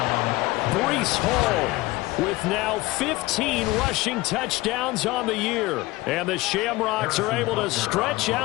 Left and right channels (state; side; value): quieter; right; 20.0 dB